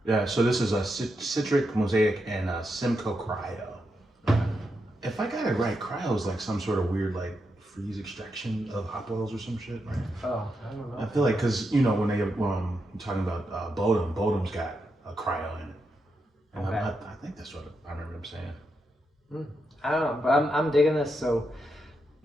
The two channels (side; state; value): both; normal; correlation 0.84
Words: Yeah, so this is a Citric, Mosaic, and a Simcoe Cryo. If I got it right, cryo is some sort of weird freeze extraction of hop oils or some shit, right? Oh, I don't know. I feel because when they talking about Bodum's got a cryo in it, and Okay. I think that's what I remember them saying. I don't know, but I'm digging this. So